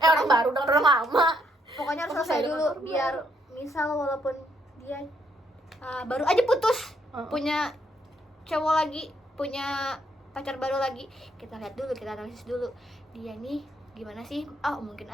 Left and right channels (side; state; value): both; normal; correlation 0.72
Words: baru dengan orang lama. Pokoknya harus Harus selesai selesai dulu, dengan orang biar misal walaupun dia baru aja putus, punya cowok lagi, punya pacar baru lagi, kita lihat dulu, kita analisis dulu dia nih gimana sih. Mungkin